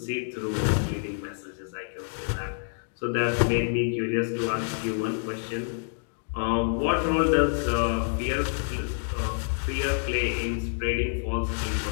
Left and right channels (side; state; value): right; silent; digital silence